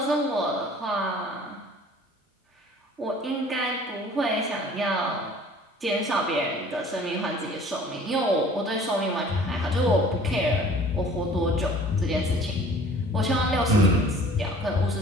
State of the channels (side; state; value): both; normal; correlation 0.50